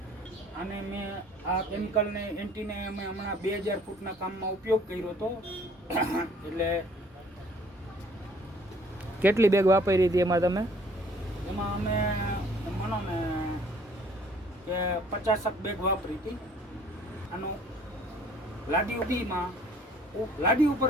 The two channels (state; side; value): normal; both; correlation 0.57